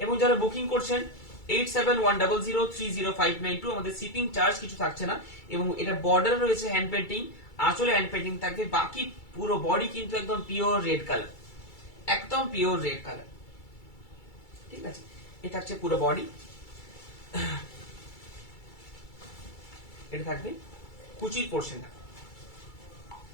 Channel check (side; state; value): right; late; 2.3 ms